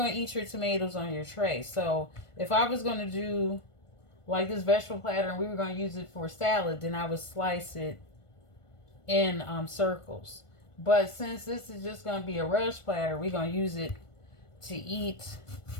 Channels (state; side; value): late; right; 1.5 ms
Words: to eat your tomatoes on your tray. So if I was going to do like this vegetable platter and we were going to use it for salad, then I would slice it in circles. But since this is just going to be a relish platter, we're going to use it to eat,